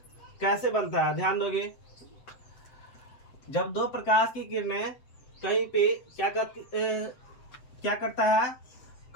कैसे बनता है, ध्यान दोगे। जब 2 प्रकाश की किरणें कहीं पे क्या करता है,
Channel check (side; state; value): right; late; 7.9 ms